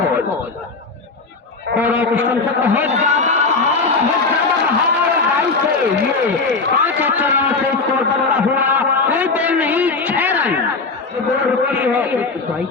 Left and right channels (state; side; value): quieter; right; 4.0 dB